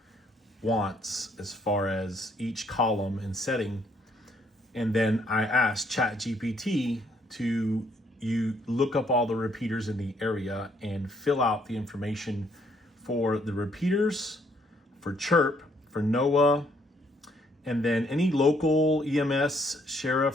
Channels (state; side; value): normal; both; correlation 0.68